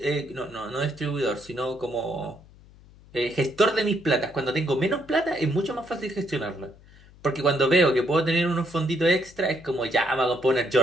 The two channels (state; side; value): noise; left; hum, 24 dB below the sound